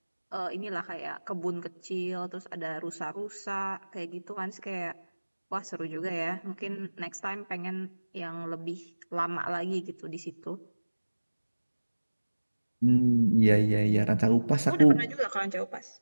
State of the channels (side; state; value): both; inverted; correlation -1.00